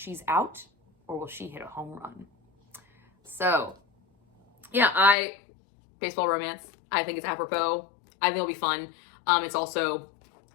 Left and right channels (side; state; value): right; drops out; at 5.2 s